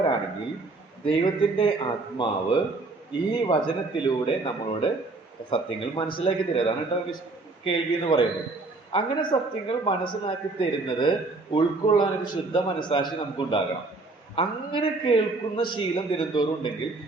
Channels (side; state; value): left; quieter; 3.4 dB